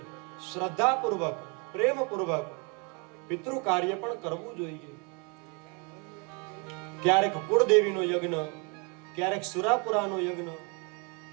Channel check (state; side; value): quieter; left; 33.1 dB